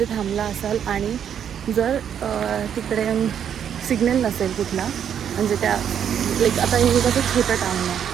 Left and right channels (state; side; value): quieter; left; 8.7 dB